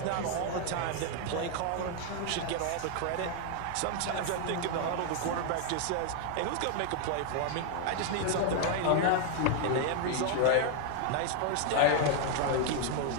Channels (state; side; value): different; both; correlation 0.00